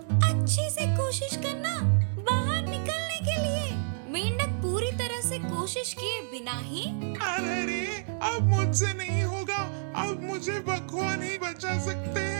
अच्छे से कोशिश करना बाहर निकलने के लिए। मेंढक पूरी तरह से कोशिश किए बिना ही अरे रे, अब मुझसे नहीं होगा, अब मुझे भगवान ही बचा सकते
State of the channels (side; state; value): left; silent; digital silence